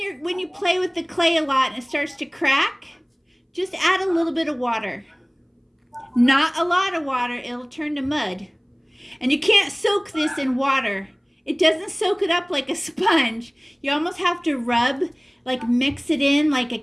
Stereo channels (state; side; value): identical; both; correlation 1.00